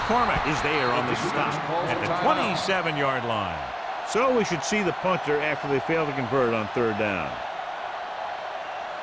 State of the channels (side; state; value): both; identical; correlation 1.00